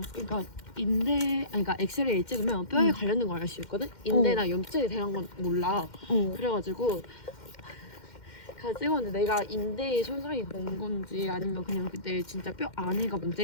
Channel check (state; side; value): late; right; 2.1 ms